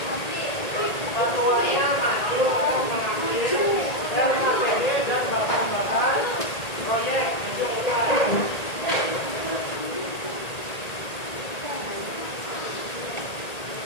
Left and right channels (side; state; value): right; late; 1.8 ms